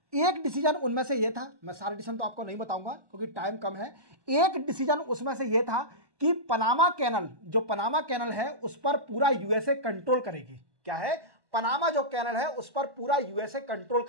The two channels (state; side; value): late; left; 1.1 ms